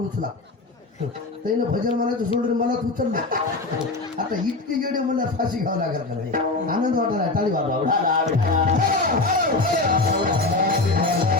उचला. त्यानं भजन म्हणायचं सोडून मलाच उचललं. आता इतके येडे मला फाशी घ्यावं लागेल का नाही. आनंद वाटला टाळी वाजवा.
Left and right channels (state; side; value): quieter; right; 3.3 dB